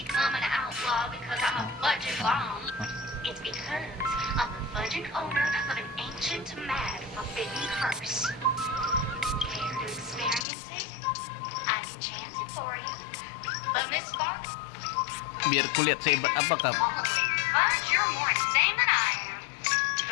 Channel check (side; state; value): right; drops out; at 10.5 s